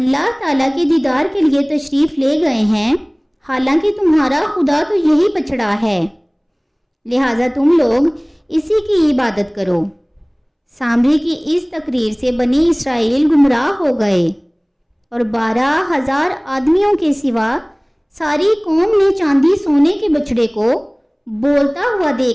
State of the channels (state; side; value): identical; both; correlation 1.00